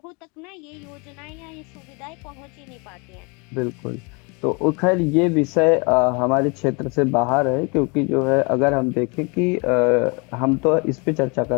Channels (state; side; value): quieter; right; 31.0 dB